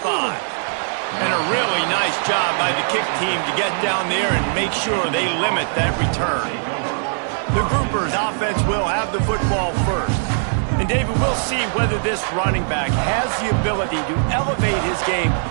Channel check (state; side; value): silent; left; digital silence